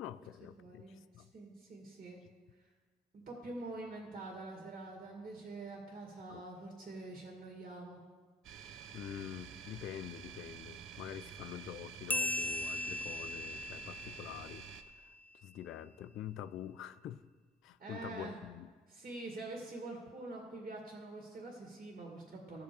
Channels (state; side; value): normal; both; correlation 0.48